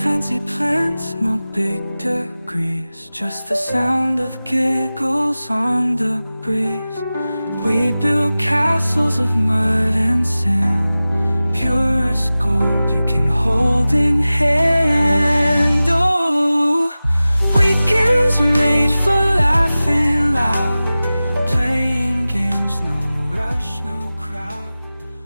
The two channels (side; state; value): both; inverted; correlation -0.97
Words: Fancy plans, no big degrees, just the sound of giggles on the breeze. We build castles of mud and sand, pure as gold.